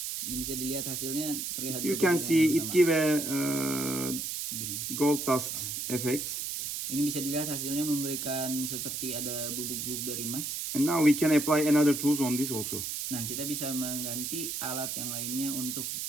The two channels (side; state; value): right; noise; hiss, 4 dB below the sound